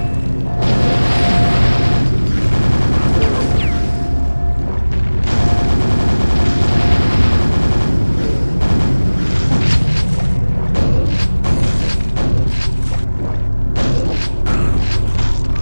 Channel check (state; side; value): inverted; both; correlation -1.00